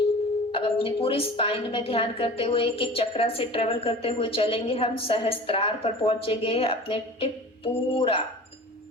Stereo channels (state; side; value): normal; both; correlation 0.39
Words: अब अपनी पूरी स्पाइन में ध्यान करते हुए एक एक चक्रा से ट्रेवल करते हुए चलेंगे। हम सहस्त्रार पर पहुंचेंगे, अपने टिप पूरा